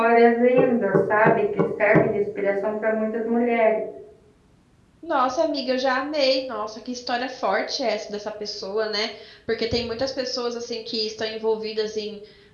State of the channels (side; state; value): both; identical; correlation 1.00